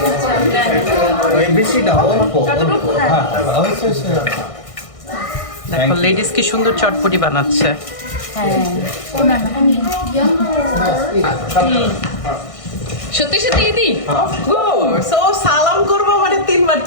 বেশি না, অল্প অল্প। হ্যাঁ দেখো লেডিস কি সুন্দর চটপটি বানাচ্ছে। সত্যি সত্যি দিদি সো সালাম করবো মানে 3 বার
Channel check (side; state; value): right; late; 1.6 ms